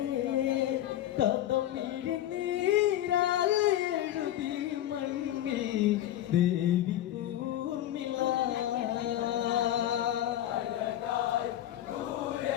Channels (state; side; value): quieter; right; 12.7 dB